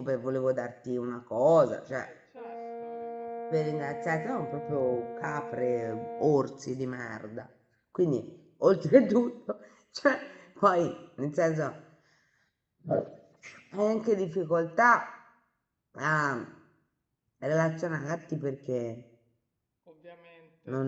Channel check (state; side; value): identical; both; correlation 1.00